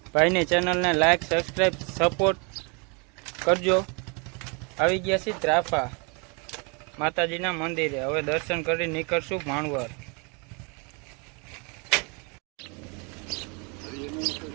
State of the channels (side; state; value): left; quieter; 33.1 dB